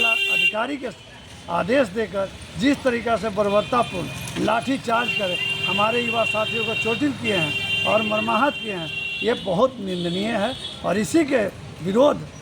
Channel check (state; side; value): identical; both; correlation 1.00